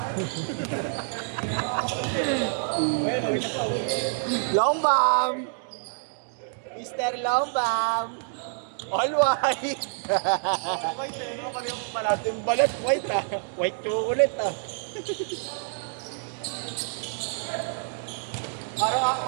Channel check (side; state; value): left; silent; digital silence